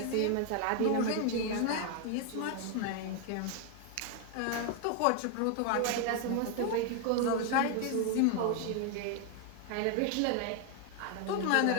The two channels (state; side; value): different; both; correlation 0.01